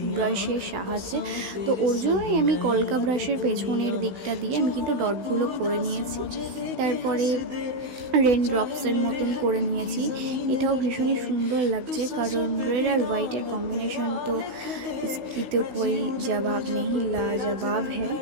ব্রাশের সাহায্যে, তো ওর জন্যই আমি কলকা ব্রাশের পেছনের দিকটা দিয়ে আমি কিন্তু ডটগুলো করে নিয়েছি। তারপরে রেন ড্রপসের মতন করে নিয়েছি। এটাও ভীষণই সুন্দর লাগছে, কারণ রেড আর হোয়াইটের কম্বিনেশন তো इसकी तो कोई जवाब नहीं, लाजवाब है।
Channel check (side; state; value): left; late; 16 ms